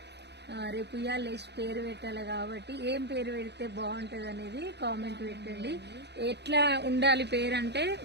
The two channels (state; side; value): late; left; 0.49 ms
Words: రేపు ఇవాళ లేచి పేరు పెట్టాలి కాబట్టి ఏం పేరు పెడితే బాగుంటది అనేది కామెంట్ పెట్టండి. ఎట్లా ఉండాలి పేరు అంటే